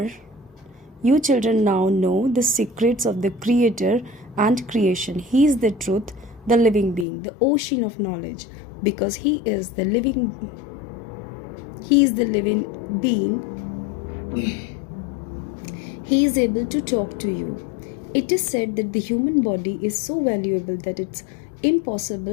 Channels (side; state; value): right; drops out; at 7.1 s